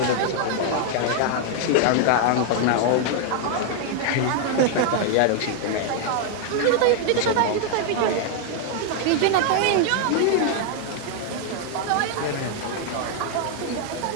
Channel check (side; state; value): both; different; correlation 0.00